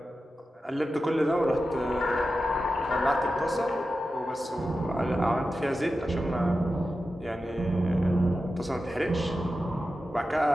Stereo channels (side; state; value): both; normal; correlation 0.92